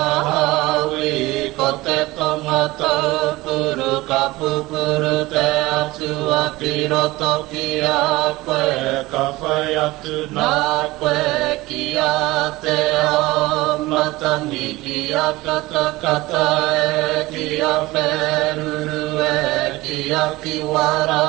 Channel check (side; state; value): left; quieter; 19.8 dB